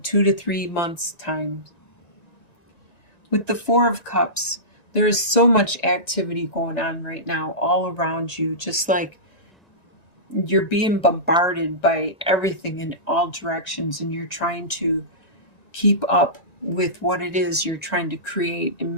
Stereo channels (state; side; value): late; right; 1.9 ms